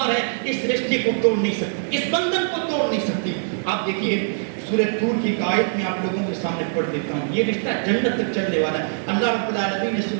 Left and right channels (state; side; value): silent; left; 64 dB below the other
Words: ہے اس رشتے کو توڑ نہیں سکتی، اس بندھن کو توڑ نہیں سکتی۔ آپ دیکھیے سورہ طور کی ایک آیت میں آپ لوگوں کے سامنے پڑھ دیتا ہوں، یہ رشتہ جنت تک چلنے والا ہے۔ اللہ رب العالمین نے